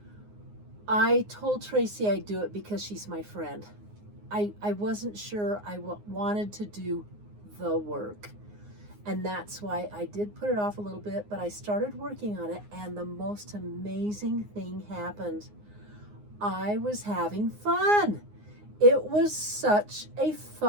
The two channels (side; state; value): left; late; 9.6 ms